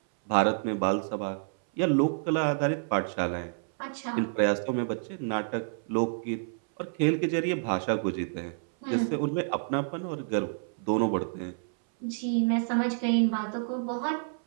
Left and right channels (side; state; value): left; silent; 59 dB below the other